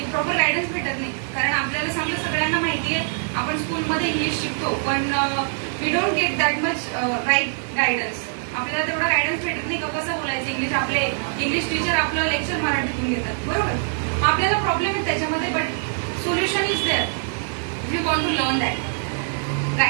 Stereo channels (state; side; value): silent; left; 58 dB below the other